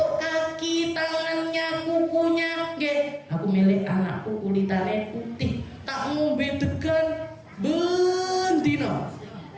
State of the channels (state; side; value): identical; both; correlation 1.00